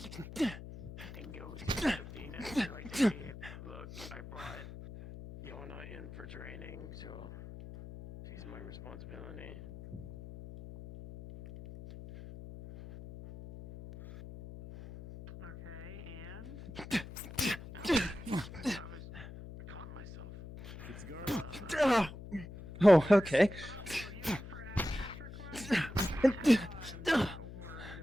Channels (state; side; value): noise; left; hum, 12 dB below the sound